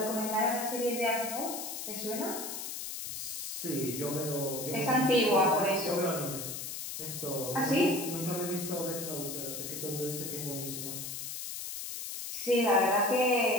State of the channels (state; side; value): noise; left; hiss, 6 dB below the sound